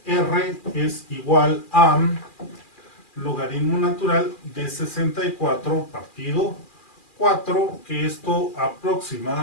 r es igual a logaritmo natural de 64 partido 4, que esto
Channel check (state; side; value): late; right; 2.4 ms